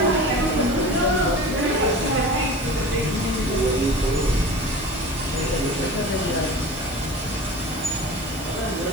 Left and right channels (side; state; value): right; noise; hiss, 18 dB below the sound